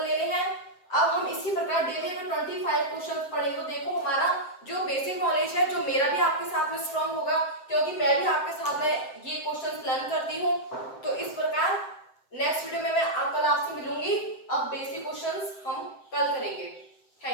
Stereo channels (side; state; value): right; late; 7.8 ms